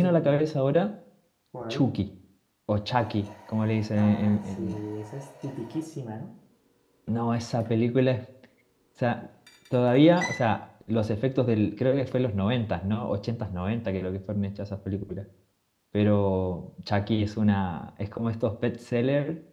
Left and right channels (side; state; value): both; identical; correlation 1.00